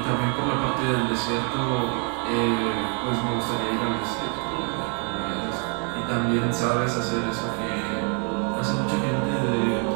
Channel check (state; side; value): quieter; left; 37.1 dB